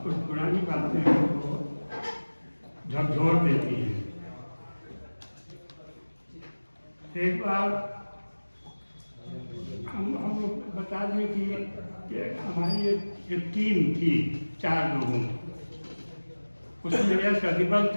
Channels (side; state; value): both; inverted; correlation -1.00